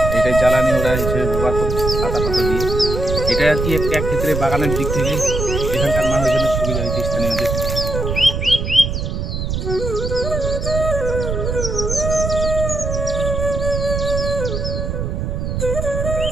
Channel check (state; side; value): noise; right; rumble, 2 dB below the sound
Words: এটাই জ্বালানি ওরা হিসেবে ব্যবহার করে পাতা দিয়ে। এটা আর কি এক ক্ষেত্রে বাগানের দিক থেকে এখানকার মানুষের জন্য সুবিধা হয়েছে স্থানীয়দের।